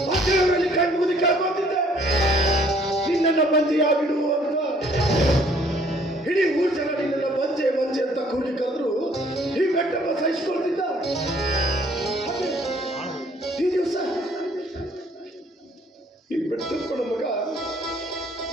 ಆ ದೇವರಲ್ಲಿ ಕಣ್ಣು ಮುಗಿ ಕೇಳ್ಕೊತಿದ್ದೆ ನಿನ್ನನ್ನ ಬಂಜೆಯಾಗಿಡು ಅಂತ. ಇಡೀ ಊರ್ ಜನ ನಿನ್ನನ್ನ ಬಂಜೆ ಅಂತ ಕೂಗಿ ಕರೆದ್ರು ಈ ಬೆಟ್ಟಪ್ಪ ಸಹಿಸ್ಕೊಳ್ತಿದ್ದ. ಈ ದಿವಸ ಈ ಬೆಟ್ಟಪ್ಪನ ಮಗ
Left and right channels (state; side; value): normal; both; correlation 0.60